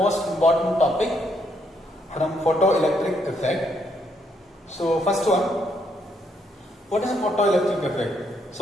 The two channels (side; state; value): both; normal; correlation 0.74